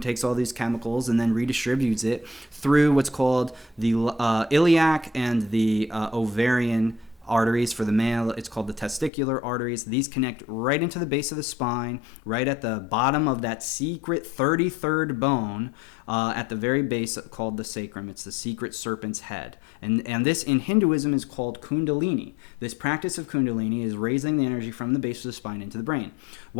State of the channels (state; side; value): drops out; right; at 9.1 s